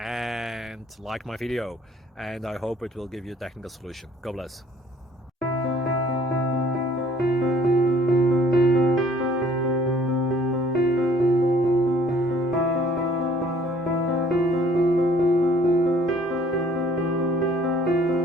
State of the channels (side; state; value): both; normal; correlation 0.58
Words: like my video, and I hope it will give you a technical solution. God bless.